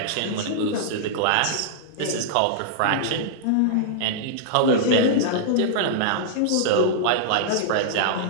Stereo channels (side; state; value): both; different; correlation -0.02